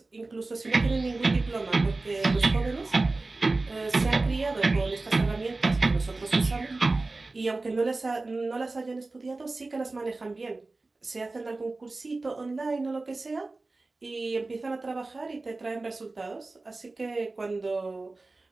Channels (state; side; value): quieter; left; 3.3 dB